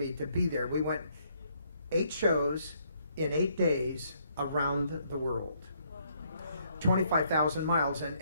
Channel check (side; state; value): both; inverted; correlation -0.70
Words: to be there. We went 8 shows in 8 days around the world. 25,000 miles,